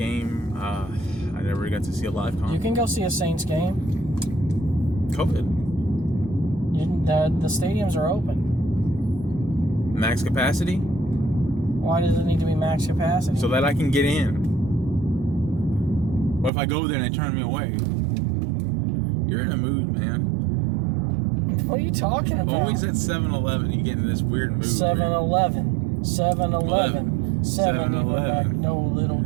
I never got to see a live concert. You can go see a Saints game. COVID. The stadiums are open. Max capacity? Why does it need to be max capacity? So that I can get in. What if I go there and they turn me away? You're in a mood, man. What are you talking about? Always at 7-Eleven, you get in this weird mood. 7-Eleven. 7-Eleven. 7-Eleven. No, Little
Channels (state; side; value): drops out; left; at 16.5 s